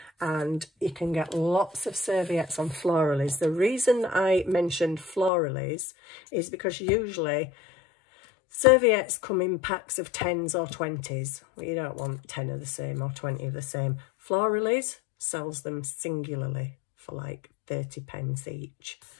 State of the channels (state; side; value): drops out; right; at 5.3 s